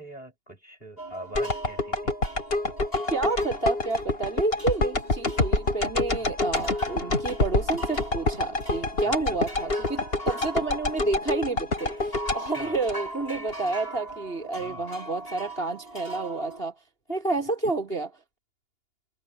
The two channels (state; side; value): late; right; 2.8 ms